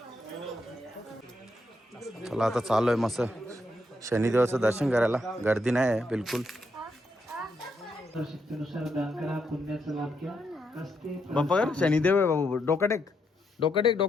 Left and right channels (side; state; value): both; normal; correlation 0.79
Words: चला आता चालू आहे मस्त शनिदेवाचं दर्शन करायला. गर्दी नाही आहे बिलकुल. बाप्पा कर शनिदेव आहे बाबू. डोका टेक डोका टेक